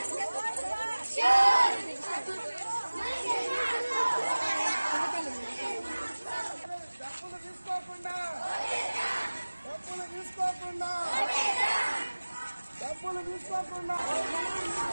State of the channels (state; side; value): inverted; both; correlation -1.00